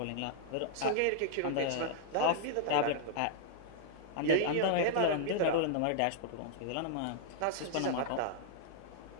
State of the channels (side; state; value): both; different; correlation -0.01